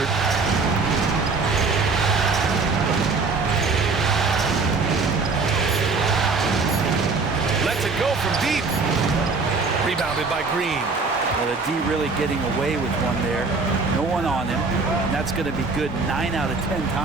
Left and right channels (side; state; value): left; quieter; 4.2 dB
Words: Lets it go from deep. Rebounded by Green. Well, the D really getting away with one there. No one on him. And that's going to be good 9 out of 10